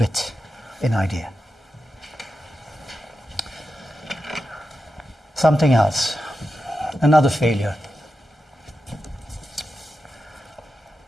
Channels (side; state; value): both; normal; correlation 0.90